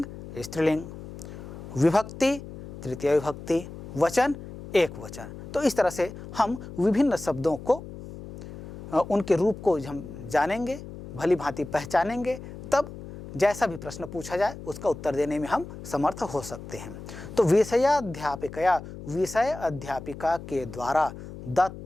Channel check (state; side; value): noise; left; hum, 12 dB below the sound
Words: स्त्रीलिंग, विभक्ति तृतीय विभक्ति, वचन एक वचन। तो इस तरह से हम विभिन्न शब्दों को उनके रूप को हम जानेंगे, भली भांति पहचानेंगे, तब जैसा भी प्रश्न पूछा जाए उसका उत्तर देने में हम समर्थ हो सकते हैं। तो विषयाध्यापिकया विषय अध्यापिका के द्वारा